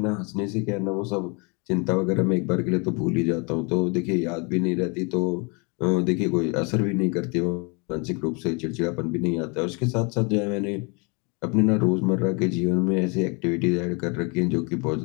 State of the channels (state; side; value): quieter; right; 31.8 dB